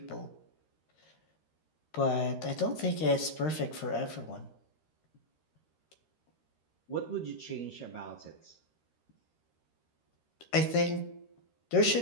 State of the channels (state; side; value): late; right; 13 ms